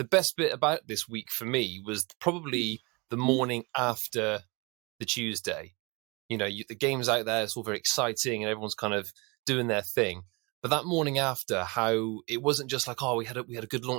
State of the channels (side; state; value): left; quieter; 28.0 dB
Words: best bit about this week for me was probably the morning after the Tuesday. You know, the game's out there, it's all very exciting, and everyone's kind of doing their thing. But that morning after, how it wasn't just like, oh, we had a good